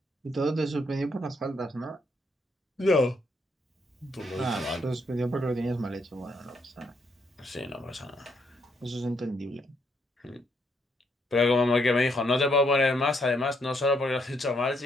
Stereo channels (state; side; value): normal; both; correlation 0.74